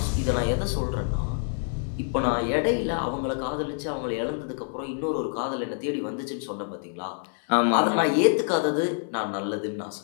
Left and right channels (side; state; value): right; silent; 60 dB below the other